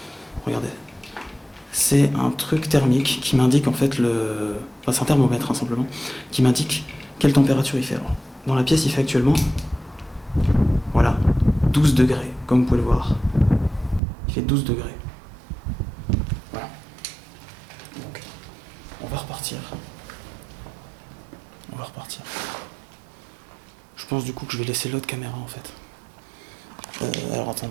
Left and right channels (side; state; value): left; drops out; at 14.0 s